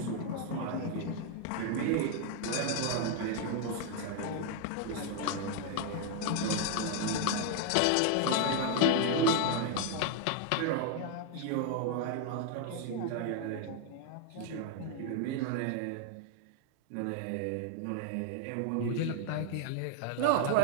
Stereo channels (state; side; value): different; both; correlation 0.00